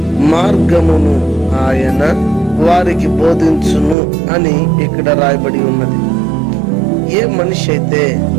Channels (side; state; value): left; drops out; at 4.0 s